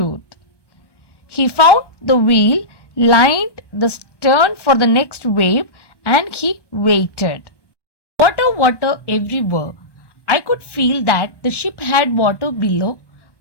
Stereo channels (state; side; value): late; right; 1.1 ms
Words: He found the wheel, lined the stern for the next wave and he waited. Water, water everywhere. I could feel that the ship had water below,